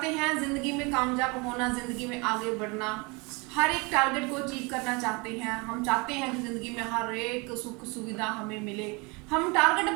हैं ज़िंदगी में कामयाब होना, ज़िंदगी में आगे बढ़ना, हर एक टारगेट को अचीव करना चाहते हैं। हम चाहते हैं कि ज़िंदगी में हर एक सुख सुविधा हमें मिले। हम टारगेट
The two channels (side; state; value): left; quieter; 28.3 dB